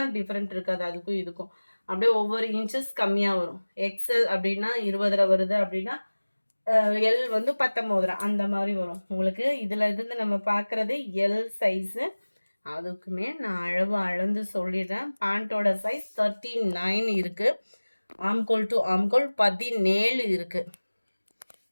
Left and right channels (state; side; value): inverted; both; correlation -1.00